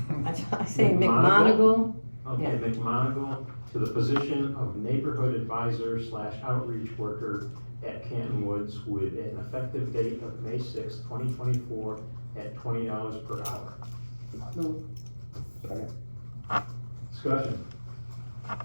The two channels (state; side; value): inverted; both; correlation -1.00